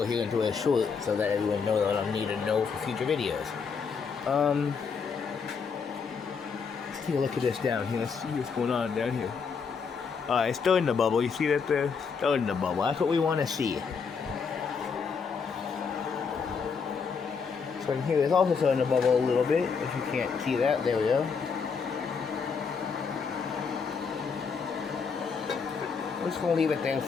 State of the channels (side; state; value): right; quieter; 5.7 dB